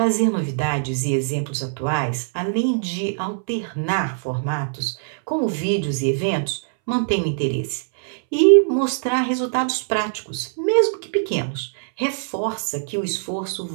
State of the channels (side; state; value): left; silent; 64 dB below the other